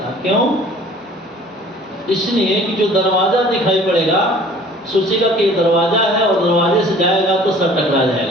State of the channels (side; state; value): both; normal; correlation 0.50